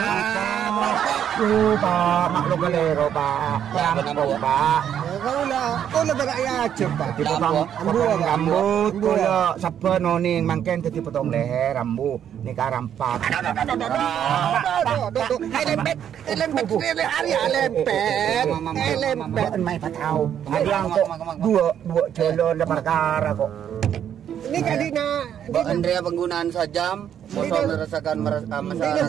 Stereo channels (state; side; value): quieter; left; 9.4 dB